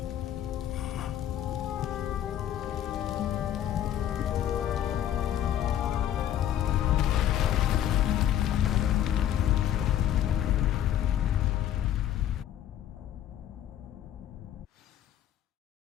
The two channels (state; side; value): quieter; right; 11.1 dB